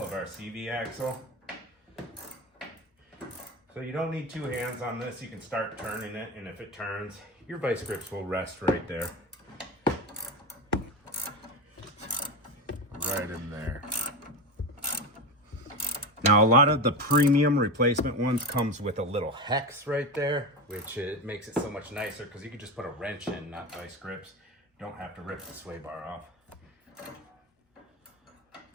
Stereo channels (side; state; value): both; normal; correlation 0.21